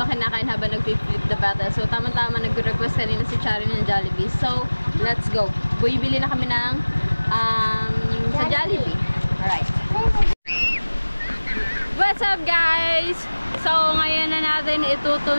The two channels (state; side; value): inverted; both; correlation -1.00